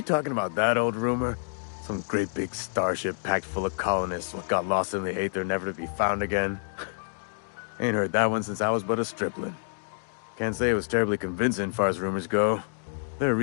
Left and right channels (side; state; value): right; silent; digital silence